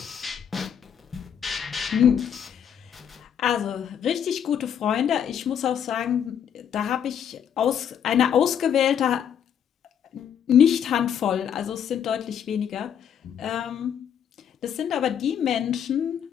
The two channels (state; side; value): quieter; right; 8.6 dB